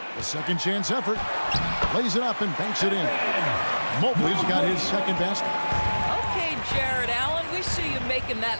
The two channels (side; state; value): both; inverted; correlation -1.00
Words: The second chance effort. Plays it up and banks it in. Mobley's got his second basket. Okay, Jared Allen, we see you making that